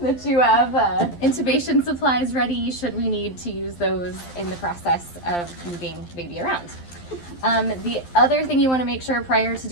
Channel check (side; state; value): right; late; 12 ms